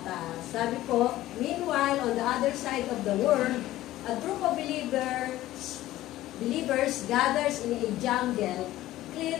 sabi ko, meanwhile, on the other side of the world, a group of believers gathers in a jungle,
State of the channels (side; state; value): right; quieter; 15.3 dB